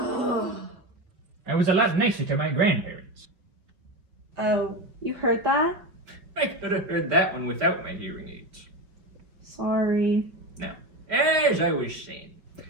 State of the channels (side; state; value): left; late; 5.2 ms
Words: was a lot nicer to my grandparents. Oh, you heard that? I could have heard that one without my hearing aids. Sorry. Now, as I was saying,